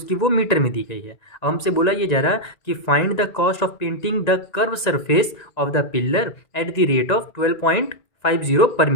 वो मीटर में दी गई है। अब हमसे बोला ये जा रहा कि find the cost of painting the curve surface of the pillar at the rate of 12.50 पर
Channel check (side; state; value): right; late; 1.9 ms